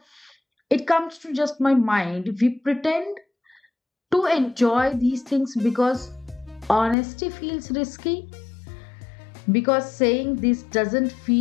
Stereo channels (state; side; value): drops out; right; at 7.0 s